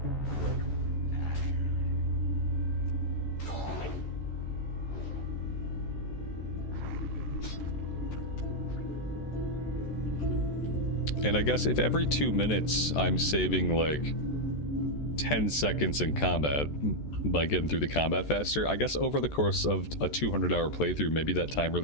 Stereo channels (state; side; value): late; right; 14 ms